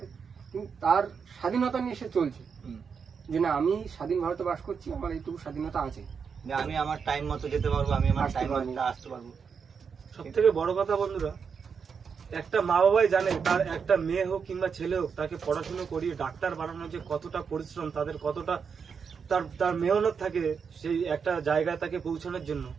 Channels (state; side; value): quieter; left; 6.2 dB